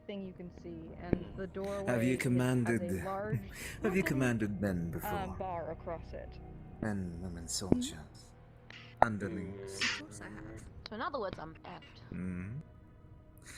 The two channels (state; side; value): identical; both; correlation 1.00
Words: thing you can see, and the doorway Have you has commanded? a large Have you commanded men before? bar across it. Men, women, soldiers, underlings. Of course I have. So in other words, I'm effed. Hmm.